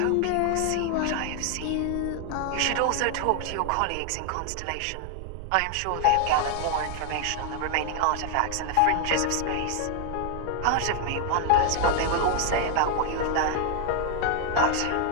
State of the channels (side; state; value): both; different; correlation 0.00